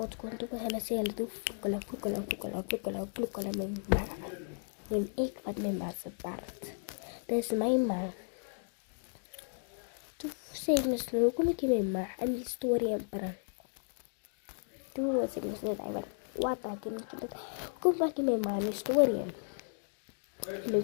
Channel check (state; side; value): silent; right; digital silence